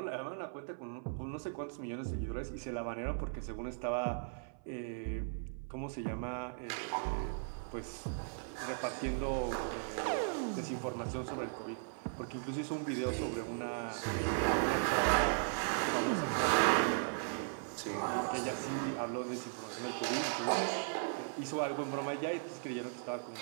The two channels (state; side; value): silent; left; 53 dB below the other